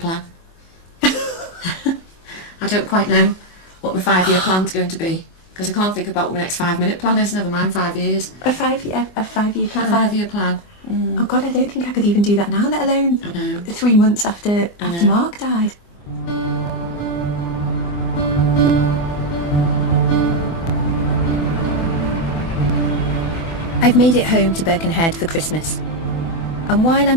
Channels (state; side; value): late; right; 24 ms